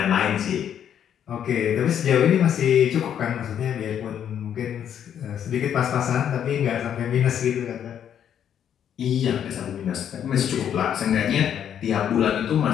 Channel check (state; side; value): quieter; right; 9.3 dB